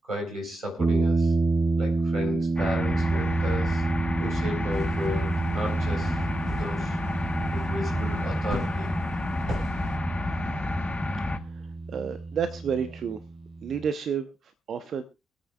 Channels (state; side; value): normal; both; correlation 0.87